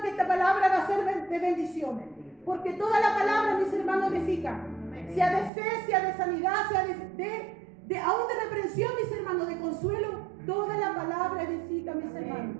que esta palabra va a ser de bendición. Porque toda la palabra, mis hermanos, edifica. Sea de fe, sea de sanidad, sea aún de reprensión, mis hermanos, de consuelo. Toda la palabra edifica, mis hermanos.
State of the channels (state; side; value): drops out; left; at 5.5 s